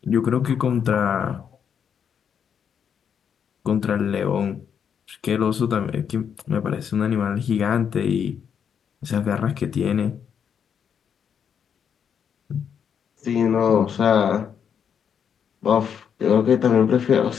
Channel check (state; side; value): quieter; right; 7.7 dB